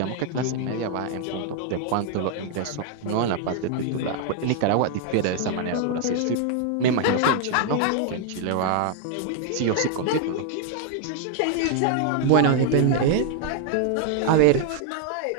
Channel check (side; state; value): both; different; correlation 0.00